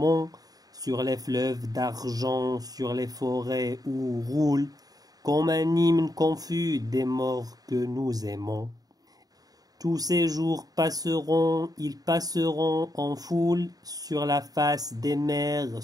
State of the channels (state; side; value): late; left; 0.18 ms